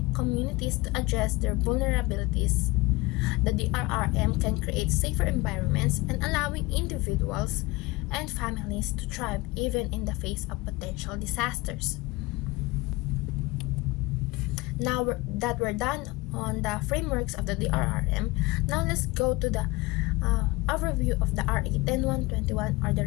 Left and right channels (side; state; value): right; quieter; 22.0 dB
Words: communities to address their vulnerabilities. The DRRM can create safer environments and allowing individuals and families to thrive even in the face of potential disasters. Now that we're done on the frameworks of the DRRM, now let's go to the overview of the RA 10121 or the